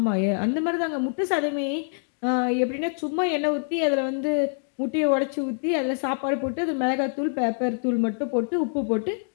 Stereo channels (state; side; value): silent; right; digital silence